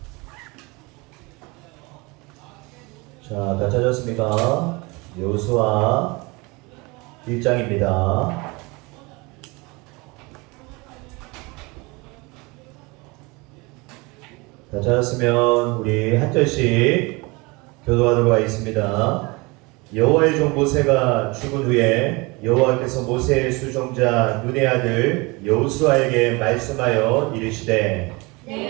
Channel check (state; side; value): quieter; left; 25.8 dB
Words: 자, 다 찾았습니까? 여호수아 1장입니다. 다 찾았으면 우리 한 절씩 교도하도록 하겠습니다. 여호와의 종 모세가 죽은 후에 여호와께서 모세의 수종자 눈의 아들 여호수아에게 말씀하여 이르시되